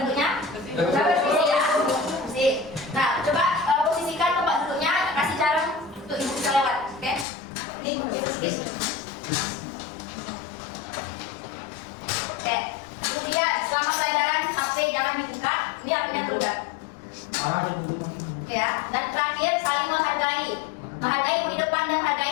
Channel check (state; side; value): drops out; right; at 7.2 s